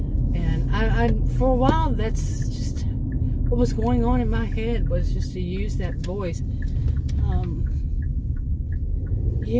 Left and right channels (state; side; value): identical; both; correlation 1.00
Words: And I for a while, that's just what was going on in my head, was just to use that voice.